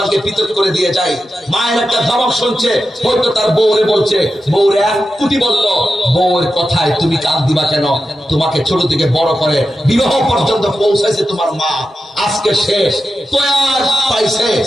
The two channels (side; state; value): both; normal; correlation 0.91